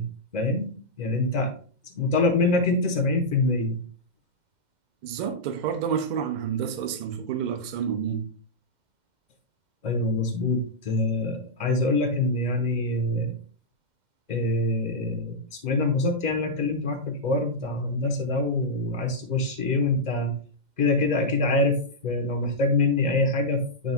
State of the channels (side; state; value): left; late; 2.1 ms